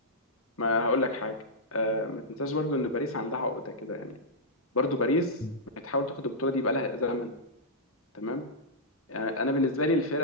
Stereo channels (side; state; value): both; normal; correlation -0.11